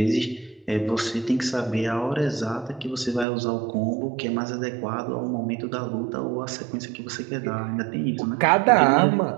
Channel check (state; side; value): drops out; left; at 3.2 s